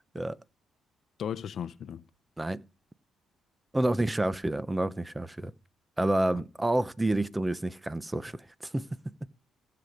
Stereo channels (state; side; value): normal; both; correlation 0.97